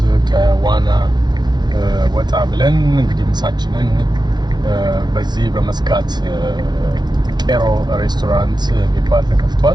ከዋና ወጣ ብለን እንግዲህ ምሳችንን በዚህ በመስካት ቄሮ ሬስቶራንት የሚባል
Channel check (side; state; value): left; late; 0.21 ms